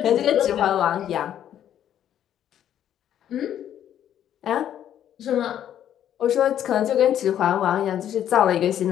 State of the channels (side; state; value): right; quieter; 10.5 dB